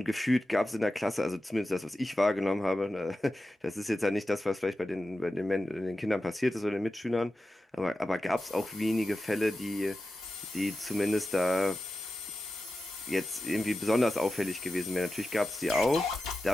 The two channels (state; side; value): normal; both; correlation 0.93